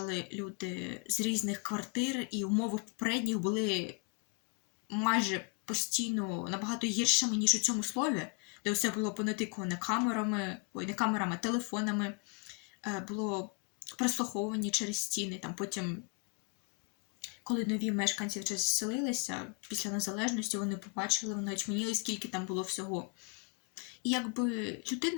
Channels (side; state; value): right; quieter; 34.4 dB